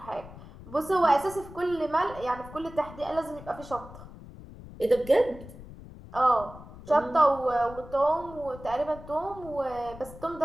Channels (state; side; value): noise; left; rumble, 16 dB below the sound